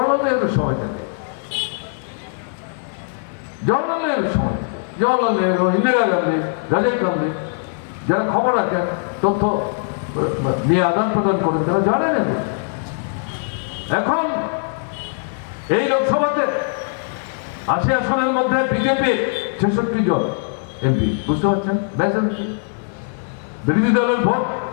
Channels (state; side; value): silent; right; digital silence